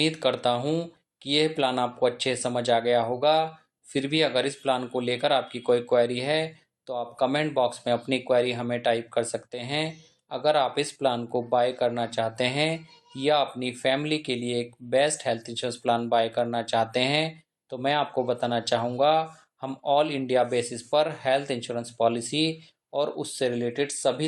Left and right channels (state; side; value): identical; both; correlation 1.00